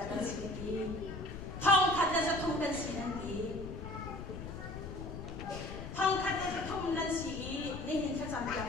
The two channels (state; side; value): noise; left; rumble, 9 dB below the sound